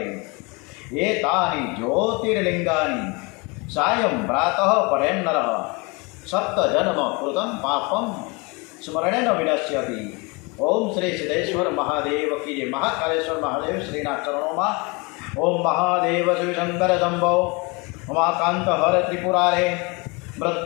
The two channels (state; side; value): quieter; right; 28.4 dB